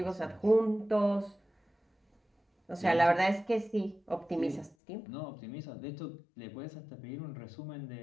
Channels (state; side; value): drops out; right; at 4.8 s